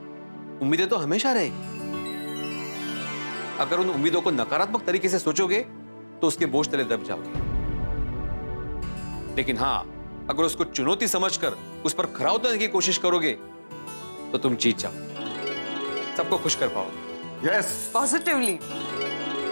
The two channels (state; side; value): inverted; both; correlation -1.00